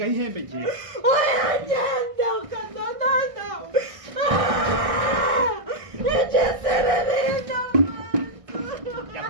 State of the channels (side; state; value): left; late; 1.6 ms